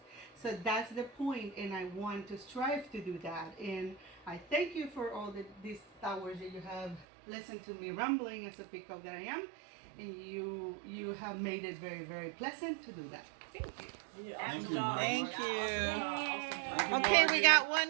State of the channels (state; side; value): drops out; left; at 7.1 s